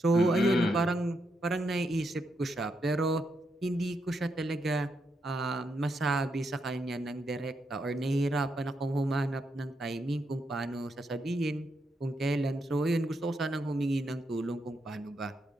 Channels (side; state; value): both; normal; correlation 0.81